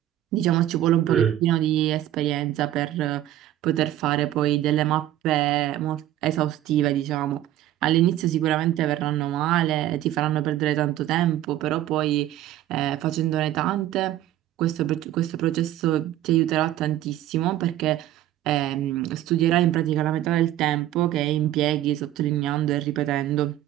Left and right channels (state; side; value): quieter; left; 13.4 dB